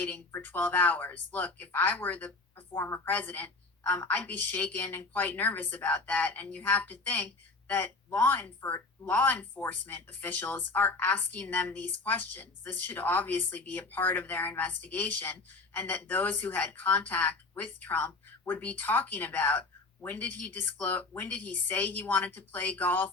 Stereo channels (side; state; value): right; quieter; 3.6 dB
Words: for 12 hours. Look, if I were the former president, I'd be shaken and quite nervous about that. And you have to think that law enforcement officials are asking them these questions. This should obviously be a part of their investigation, and that those who had contact with Trump would be talking about, when did he disclose, when did he say he wanted to play